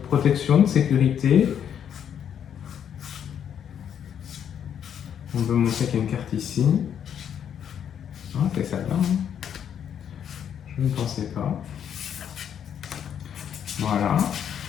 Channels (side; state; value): right; quieter; 8.8 dB